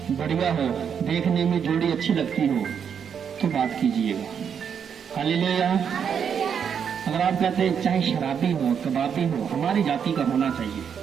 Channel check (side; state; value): left; quieter; 7.5 dB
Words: बढ़िया हो, देखने में जोड़ी अच्छी लगती हो, तो बात कीजिएगा। हालेलुया। अगर आप कहते हैं चाहे शराबी हो, कबाबी हो, हमारी जाति का होना चाहिए,